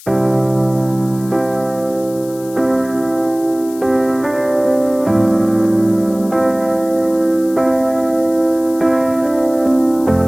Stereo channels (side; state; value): left; noise; hiss, 20 dB below the sound